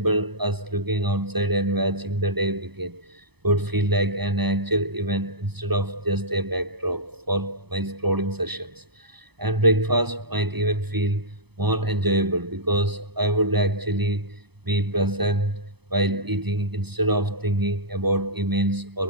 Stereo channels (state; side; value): late; left; 0.98 ms